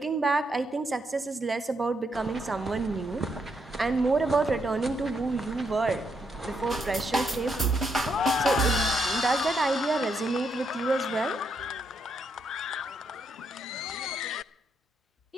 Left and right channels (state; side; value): normal; both; correlation 0.78